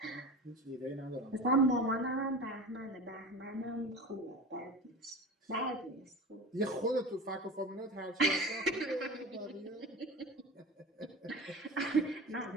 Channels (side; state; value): both; normal; correlation 0.32